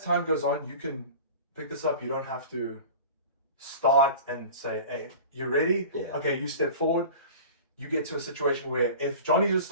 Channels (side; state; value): both; inverted; correlation -0.38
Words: time goes on, you can pick this up. You don't have to start and say, hey, you ready? Yeah. Okay, you step forward. You get to a situation where if Johnny just